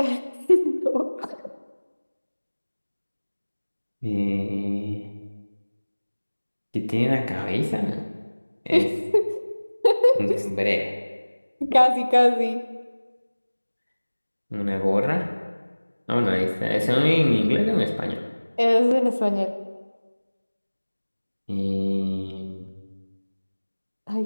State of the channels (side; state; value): both; inverted; correlation -1.00